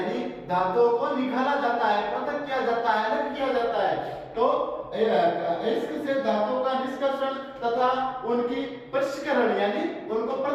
धातुओं को निकाला जाता है, पृथक किया जाता है, अलग किया जाता है। तो अयस्क से धातु का निष्कर्षण तथा उनकी पृष्ठकरण, यानी उनको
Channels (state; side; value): identical; both; correlation 1.00